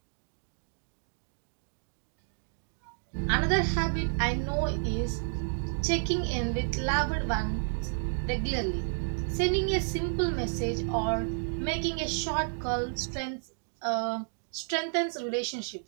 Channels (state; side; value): silent; left; digital silence